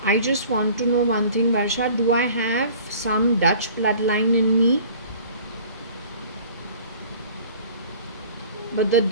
I just want to know one thing, Varsha. Do I have some Dutch bloodline in me? But the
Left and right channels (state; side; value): inverted; both; correlation -0.47